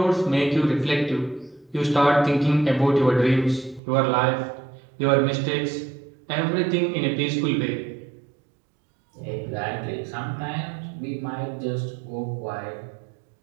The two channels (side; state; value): left; drops out; at 3.8 s